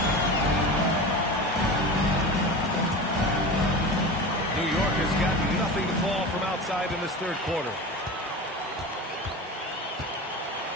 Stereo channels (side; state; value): both; normal; correlation 0.30